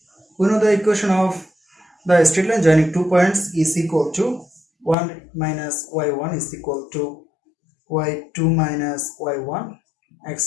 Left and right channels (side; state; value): right; drops out; at 5.0 s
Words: We know the equation of the straight line joining 2 points is equal to 1 minus y1 is equal to y2 minus y1